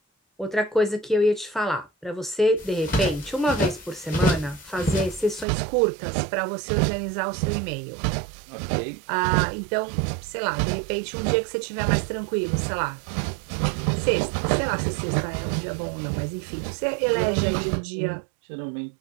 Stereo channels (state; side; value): drops out; left; at 5.5 s